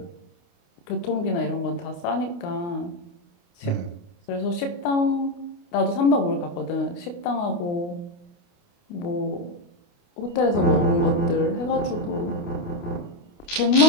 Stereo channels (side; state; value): right; late; 29 ms